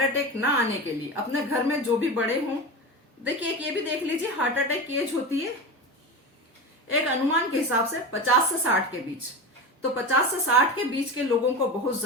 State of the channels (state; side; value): normal; both; correlation 0.25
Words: अटैक ना आने के लिए। अपने घर में जो भी बड़े हों, देखिए एक ये भी देख लीजिए, हार्ट अटैक की एज होती है एक अनुमान के हिसाब से 50 से 60 के बीच। तो 50 से 60 के बीच के लोगों को बहुत